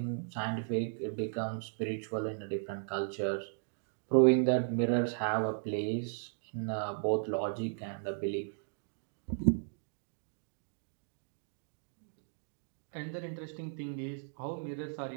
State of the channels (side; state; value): left; silent; digital silence